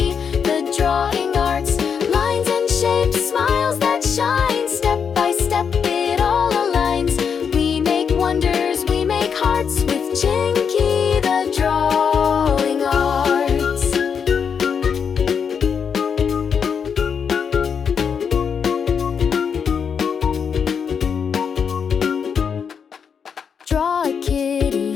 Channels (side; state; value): right; quieter; 6.8 dB